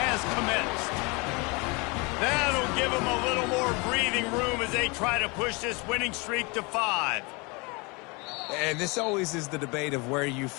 has commenced. That'll give him a little more breathing room as they try to push this winning streak to 5. And this always is the debate of where you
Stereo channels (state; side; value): quieter; right; 28.5 dB